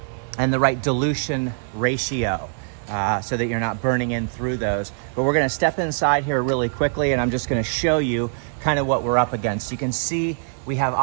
right dilution ratio. So that you're not burning in through those. But we're gonna step inside here really quickly, and I'm just gonna show you kind of what we're up against. You can see we have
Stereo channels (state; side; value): silent; left; digital silence